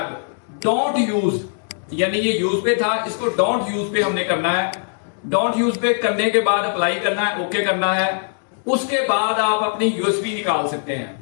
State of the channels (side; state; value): right; silent; digital silence